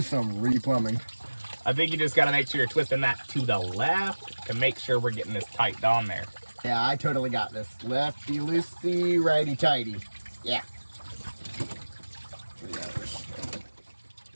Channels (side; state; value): both; inverted; correlation -1.00